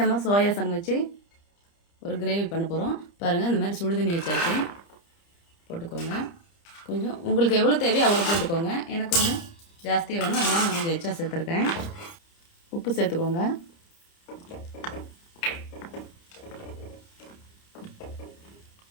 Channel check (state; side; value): late; right; 30 ms